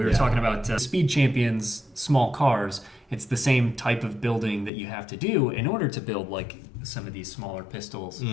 were talking about Speed Champions, small cars. It's the same type of building that you have to do in order to build, like, some of these smaller pistols.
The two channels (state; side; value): drops out; right; at 4.7 s